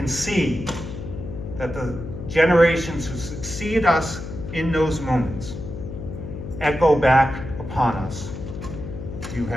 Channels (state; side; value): noise; left; hum, 8 dB below the sound